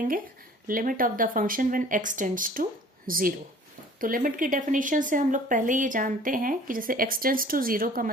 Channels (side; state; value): both; normal; correlation 0.49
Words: limit of the function when x tends to 0। तो लिमिट की डेफिनेशन से हम लोग पहले ये जानते हैं कि जैसे x टेंड्स टू 0 का